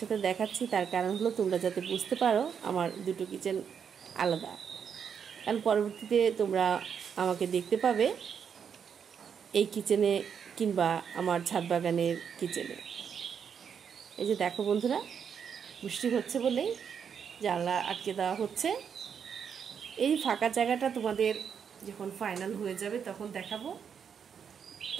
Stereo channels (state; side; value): quieter; left; 7.3 dB